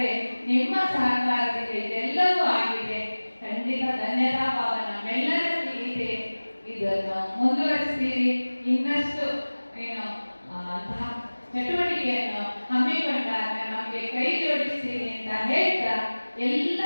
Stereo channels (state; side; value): inverted; both; correlation -1.00